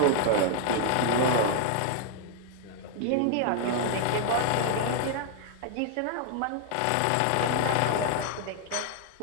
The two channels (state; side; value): different; both; correlation 0.00